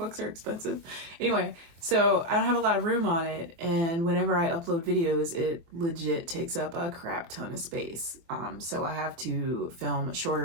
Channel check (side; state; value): left; late; 24 ms